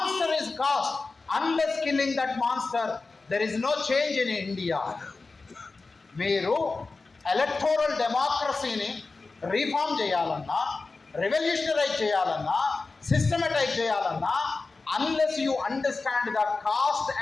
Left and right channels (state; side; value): quieter; right; 3.8 dB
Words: is caste. Unless killing that monster there is no change in India. మీరు electoral డెమోక్రసీని reform చేయాలన్నా, revolutionise చేయాలన్నా, systematise చేయాలన్నా, unless you understand the caste